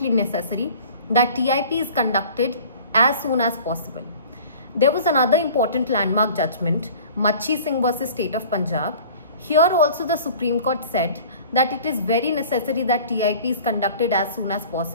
necessary that TIP is conducted as soon as possible. There was another important landmark judgment, Machi Singh versus State of Punjab. Here also the Supreme Court said that it is very necessary that TIP is conducted as soon as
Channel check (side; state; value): both; inverted; correlation -0.45